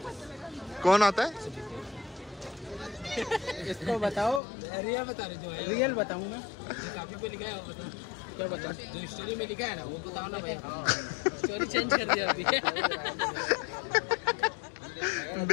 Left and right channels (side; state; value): right; drops out; at 4.4 s